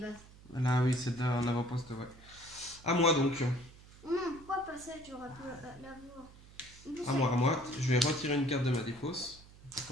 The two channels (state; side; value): noise; right; hum, 21 dB below the sound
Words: Là, oui, c'est en avant-poste, ouais. À moi donc. Non, pourquoi pas ça, j'aurais pu l'avoir. À moi. Je vais retirer une carte de ma défausse.